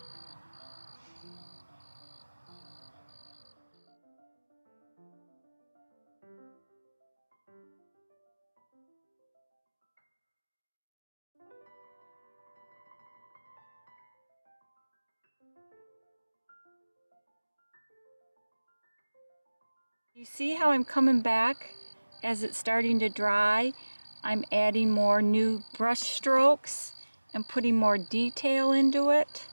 You see how I'm coming back as it's starting to dry? I'm adding more new brush strokes and putting more detail into it.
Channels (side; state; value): both; inverted; correlation -1.00